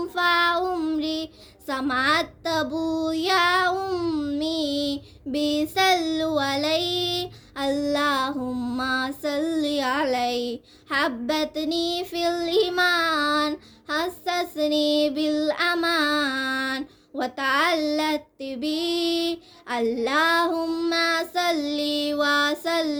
في عمري سمعت أبويا أمي بيصلوا علي اللهم صل علي حبتني في الإيمان حسسني بالأمان وتعلقت بي اللهم صل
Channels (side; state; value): both; identical; correlation 1.00